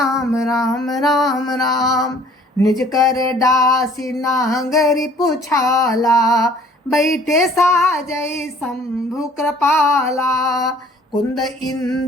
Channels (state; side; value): normal; both; correlation 0.54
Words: राम राम राम। निज कर दासी नांगरी पुछाला, बैठे साजय शंभु कृपाला। कुंद